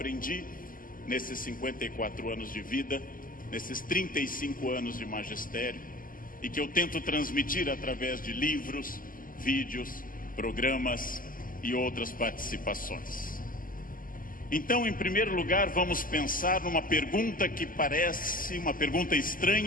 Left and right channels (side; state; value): right; late; 0.41 ms